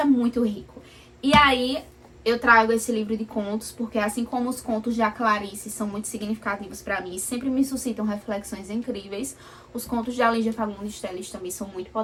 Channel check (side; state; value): both; identical; correlation 1.00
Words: é muito rico. E aí, eu trago esse livro de contos, porque assim como os contos de Clarice são muito significativos pra mim, sempre me suscitam reflexões incríveis, os contos de Lígia Fagundes Telles também são muito